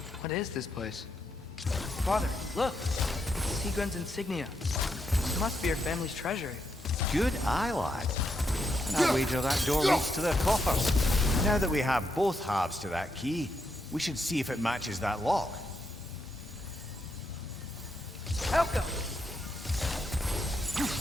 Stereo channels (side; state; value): both; normal; correlation 0.81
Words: What is this place? Father, look. Seagram's insignia. This must be your family's treasure. Good eye, lad. And I wager that door leads to their coffers. Now that we have both halves to that key, we should see if it matches that lock. Elka!